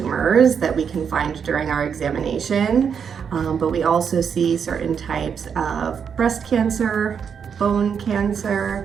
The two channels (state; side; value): quieter; left; 7.0 dB